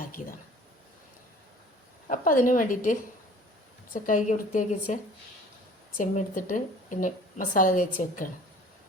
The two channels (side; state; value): both; normal; correlation 0.48